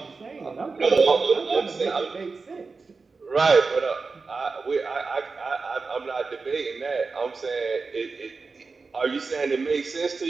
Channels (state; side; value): quieter; left; 4.3 dB